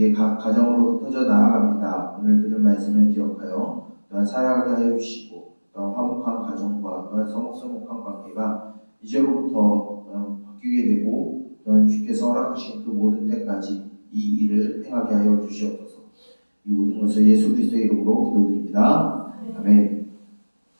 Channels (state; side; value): inverted; both; correlation -1.00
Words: 각 가정으로 흩어져 나아갑니다. 오늘 들은 말씀을 기억하여 또한 살아가게 하여 주시고, 또한 화목한 가정과 또한 서먹서먹한 관계가 이제로부터 바뀌게 되고, 또한 주께서 허락하신 그 모든 때까지 이 일을 행하게 하여 주시옵소서. 이 모든 것을 예수 그리스도의 이름으로 기도드립니다. 아멘.